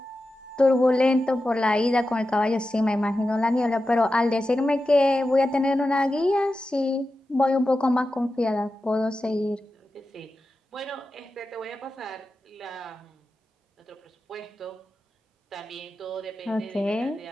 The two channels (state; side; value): normal; both; correlation 0.92